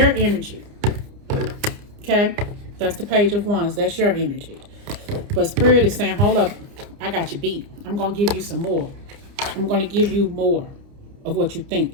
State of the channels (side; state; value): left; late; 30 ms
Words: Okay? That's the Page of Wands. That's your energy. But Spirit is saying, hold up, I got you beat. I'm going to give you some more. I'm going to give you more of what you